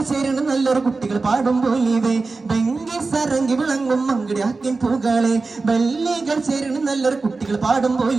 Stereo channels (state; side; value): quieter; left; 3.9 dB